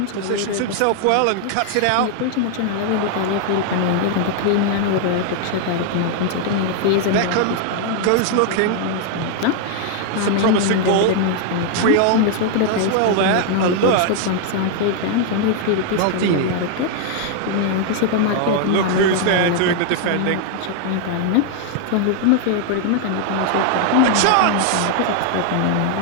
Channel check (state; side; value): different; both; correlation 0.00